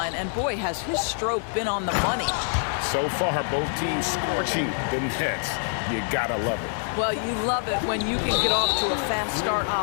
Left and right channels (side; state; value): right; silent; 61 dB below the other